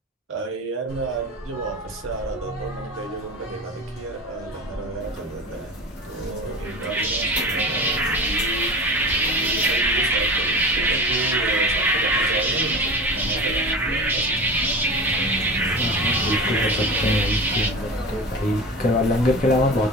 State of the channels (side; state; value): both; normal; correlation 0.32